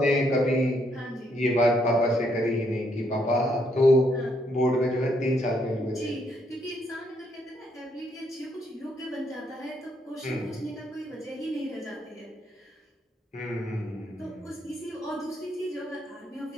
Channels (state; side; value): normal; both; correlation 0.74